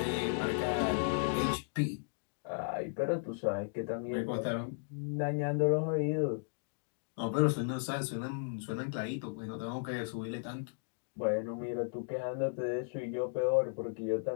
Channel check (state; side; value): silent; right; digital silence